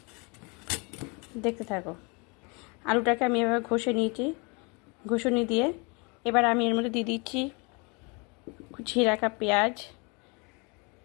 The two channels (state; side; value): quieter; right; 30.8 dB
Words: দেখতে থাকো। আলুটাকে আমি এভাবে ঘষে নিয়েছি ঘষুনি দিয়ে। এবার আমি এর মধ্যে দিয়ে দিচ্ছি কুচিয়ে রাখা পেঁয়াজ,